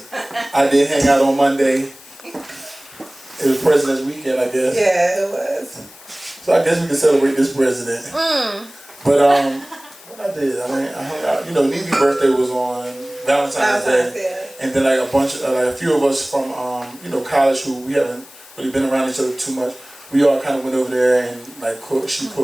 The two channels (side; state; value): left; noise; hiss, 21 dB below the sound